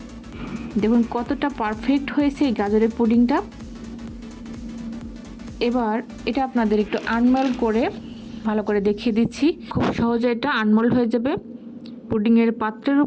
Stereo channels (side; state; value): both; identical; correlation 1.00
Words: দেখুন কতটা পারফেক্ট হয়েছে এই গাজরের পুডিংটা। এবার এটা আপনাদের একটু আনমোল্ড করে ভালো করে দেখিয়ে দিচ্ছি। খুব সহজে এটা আনমোল্ড হয়ে যাবে। পুডিংয়ের পাত্রের